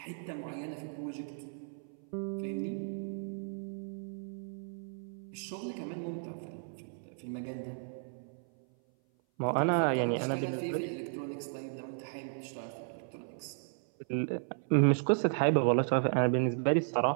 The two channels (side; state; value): left; silent; 55 dB below the other